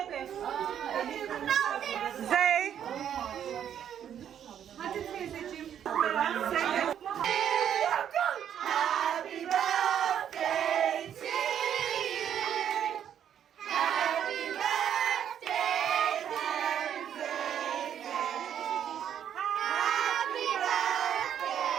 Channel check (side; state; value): left; quieter; 9.4 dB